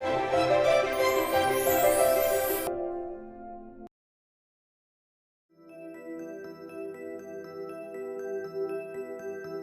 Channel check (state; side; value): identical; both; correlation 1.00